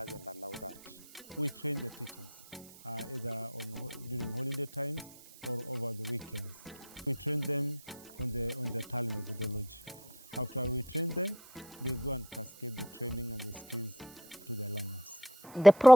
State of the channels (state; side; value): noise; right; hiss, 21 dB below the sound